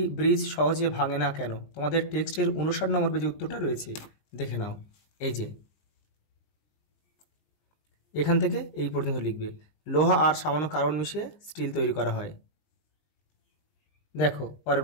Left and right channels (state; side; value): late; right; 20 ms